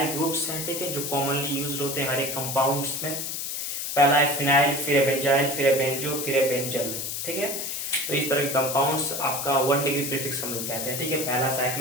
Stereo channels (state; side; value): noise; left; hiss, 3 dB below the sound